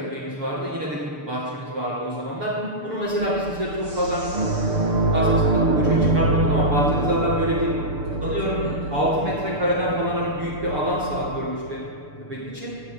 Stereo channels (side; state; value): left; late; 6.8 ms